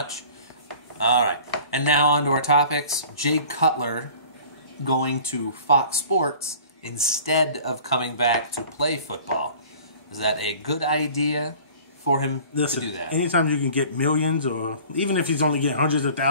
All right. And now on to our topics. Jay Cutler going to Fox Sports instead of coming back to play football. Is that a good idea for him to do that? Anytime you can get millions, or even if he's only getting hundreds of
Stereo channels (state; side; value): inverted; both; correlation -0.46